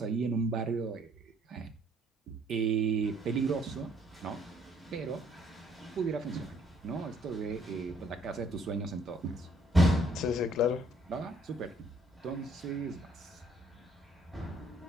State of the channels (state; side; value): normal; both; correlation 0.63